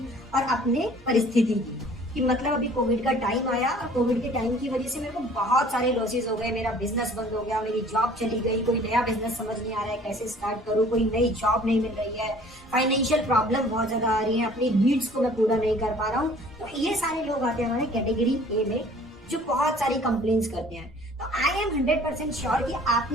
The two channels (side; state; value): both; normal; correlation 0.52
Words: और अपने परिस्थिति की, कि मतलब अभी कोविड का टाइम आया और कोविड के टाइम की वजह से मेरे को बहुत सारे लॉसेस हो गए, मेरा बिजनेस बंद हो गया, मेरी जॉब चली गई, कोई नया बिजनेस समझ नहीं आ रहा है कैसे स्टार्ट करूं, कोई नई जॉब नहीं मिल रही है, फाइनेंशियल प्रॉब्लम बहुत ज्यादा आ रही है, अपनी नीड्स को मैं पूरा नहीं कर पा रहा हूँ। तो ये सारे लोग आते हैं हमारे कैटेगरी ए में जो बहुत सारी कंप्लेंट्स करते हैं। तो आई एम 100% श्योर कि